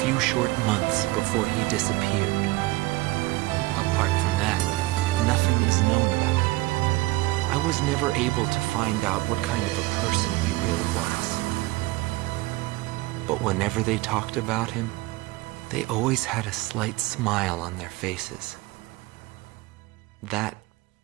few short months before he disappeared. Apart from that, nothing is known about him. I was never able to find out what kind of a person he really was. But whenever they talked about him, they always had a slight smile on their faces. That,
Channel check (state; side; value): quieter; left; 20.1 dB